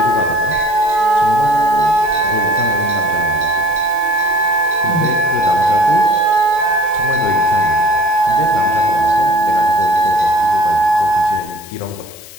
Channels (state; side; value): noise; left; hiss, 18 dB below the sound